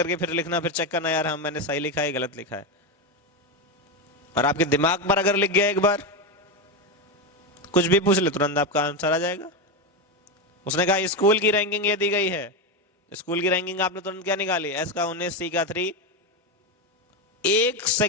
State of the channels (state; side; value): normal; both; correlation 0.12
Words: फिर लिखना, फिर चेक करना यार हम मैंने सही लिखा है गलत लिखा है। और आपके दिमाग पर अगर लिख गया एक बार, कुछ भी पूछ ले तुरंत आपका आंसर आ जाएगा। उसने कहा स्कूल की रैंकिंग ये दी गई है, स्कूल की रैंकिंग आपने तुरंत क्या निकाली, एस का 19, सी का 3। 1